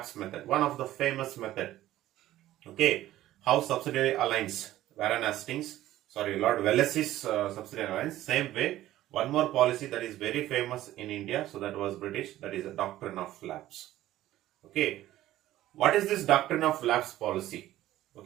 method, one of the famous method. Okay, House Subsidiary Alliance, Lord Wellesley's subsidiary alliance. Same way, one more policy that is very famous in India, so that was British, that is a Doctrine of Lapse. Okay, what is this Doctrine of Lapse policy?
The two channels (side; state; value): left; quieter; 14.4 dB